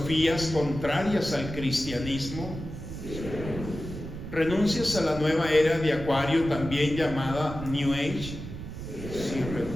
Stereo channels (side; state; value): right; noise; rumble, 9 dB below the sound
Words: contrarias al cristianismo? Sí, ¿renuncias a la nueva era de Acuario, también llamada New Age? Sí,